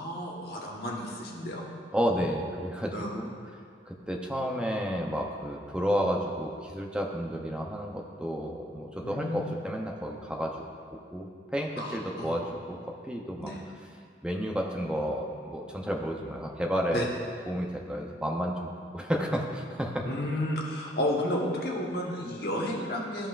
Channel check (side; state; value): both; normal; correlation 0.68